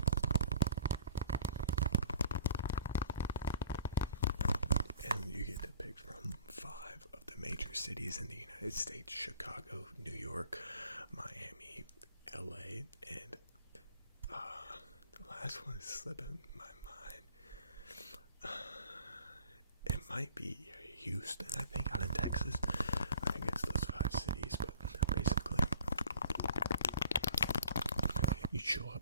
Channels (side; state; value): both; inverted; correlation -0.49